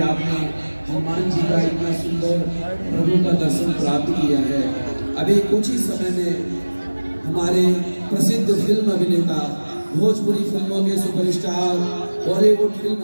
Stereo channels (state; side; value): inverted; both; correlation -1.00